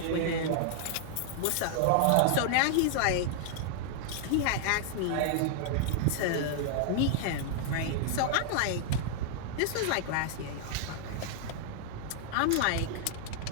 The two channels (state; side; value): different; both; correlation -0.01